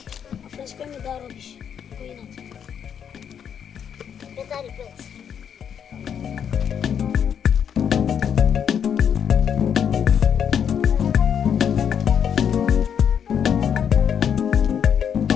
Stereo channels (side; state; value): right; quieter; 8.1 dB